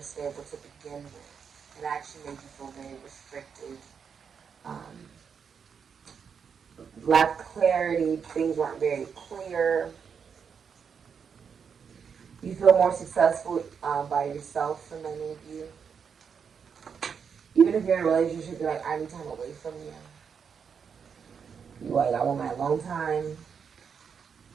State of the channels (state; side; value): quieter; left; 6.7 dB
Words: stable to begin with. It actually made you feel very restricted. Lacked clarity, things weren't very clear. You feel more successful by yourself for many of you. Even if you're in a relationship, you're like, I need time away from you. You're like, I want my alone time.